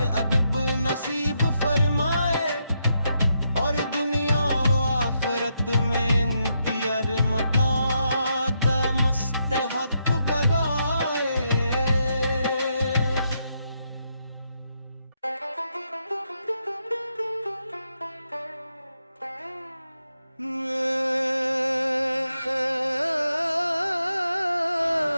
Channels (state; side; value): inverted; both; correlation -0.80